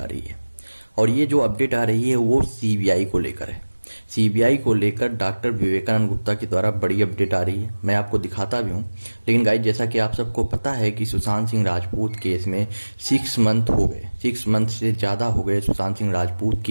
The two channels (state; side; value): inverted; both; correlation -1.00